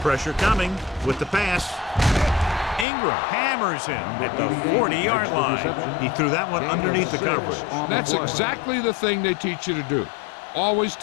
Pressure coming with the pass. Ingram hammers him at the 40-yard line. He threw that one underneath the coverage. That's exactly the thing they teach you to do. Always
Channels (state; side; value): drops out; right; at 2.9 s